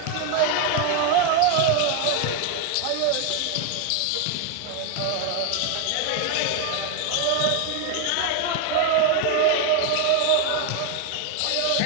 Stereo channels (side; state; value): both; different; correlation 0.01